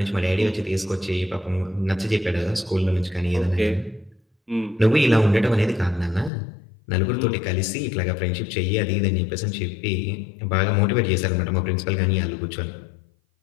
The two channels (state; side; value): drops out; right; at 6.3 s